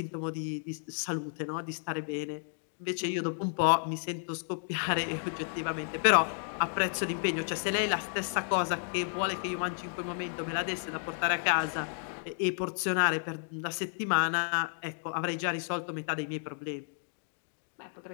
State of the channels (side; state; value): right; silent; digital silence